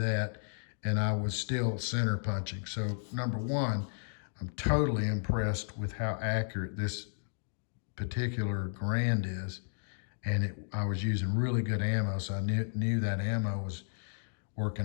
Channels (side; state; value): right; silent; digital silence